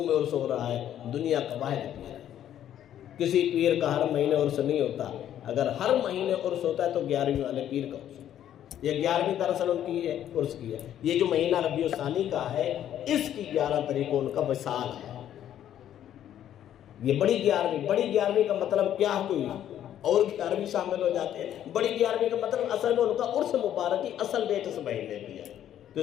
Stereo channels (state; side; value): quieter; right; 10.9 dB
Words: میں عرس ہو رہا ہے، دنیا کا واحد پیر ہے۔ کسی پیر کا ہر مہینے عرس نہیں ہوتا، اگر ہر مہینے عرس ہوتا ہے تو 11ویں والے پیر کا عرس ہوتا ہے۔ یہ 11ویں دراصل ان کی ہے، عرس کی ہے۔ یہ جو مہینہ ربیع الثانی کا ہے، اس کی 11 تاریخ کو ان کا وصال ہے۔ یہ بڑی 11ویں کا مطلب کیا کوئی اور 11ویں شامل ہو جاتے ہیں۔ بڑی 11ویں کا مطلب اصل میں ان کا عرس مبارک کی اصل ڈیٹ اس مہینے کی ہے، تو